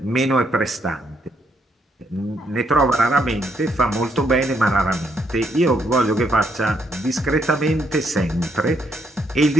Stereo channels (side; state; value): both; normal; correlation 0.74